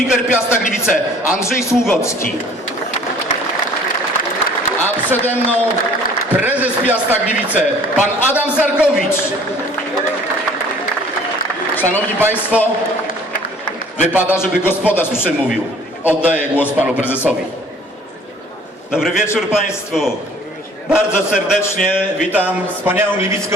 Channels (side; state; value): both; normal; correlation 0.53